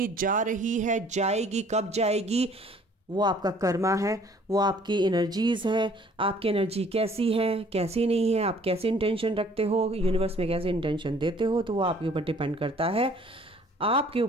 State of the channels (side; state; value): both; normal; correlation 0.56